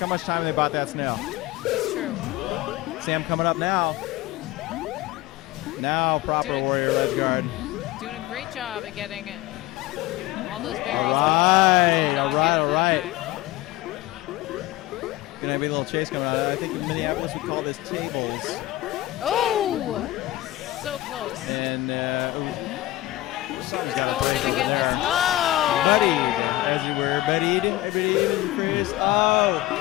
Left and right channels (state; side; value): quieter; right; 16.8 dB